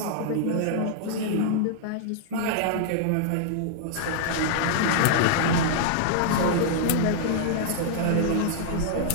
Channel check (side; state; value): both; different; correlation -0.01